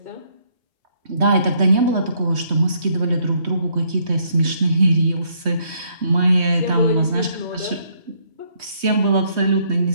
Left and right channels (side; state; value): left; late; 3.2 ms